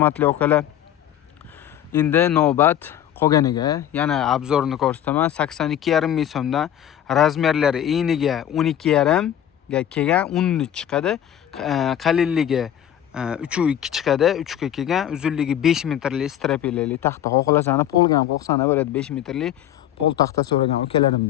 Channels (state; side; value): quieter; right; 10.9 dB